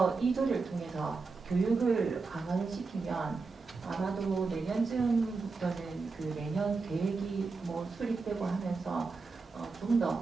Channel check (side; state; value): left; quieter; 4.3 dB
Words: 이 조례를 통해서 교육을 강화를 시키면 아마도 내년쯤부터는 그 내년 계획이 수립되고 하면서 좀